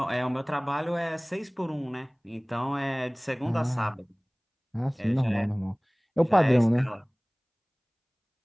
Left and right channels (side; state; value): both; identical; correlation 1.00